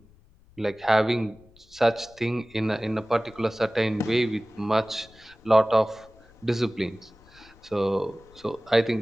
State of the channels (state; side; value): noise; left; rumble, 27 dB below the sound